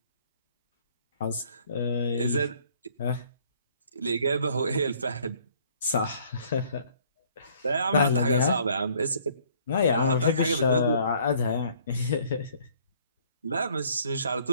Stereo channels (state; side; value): inverted; both; correlation -0.59